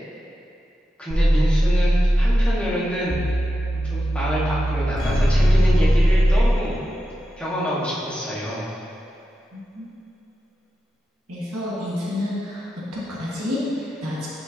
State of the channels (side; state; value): both; normal; correlation 0.90